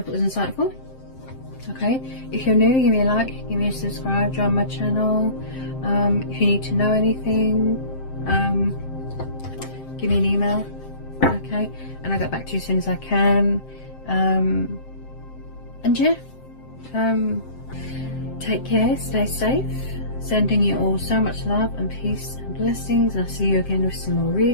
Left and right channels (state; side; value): late; right; 7.6 ms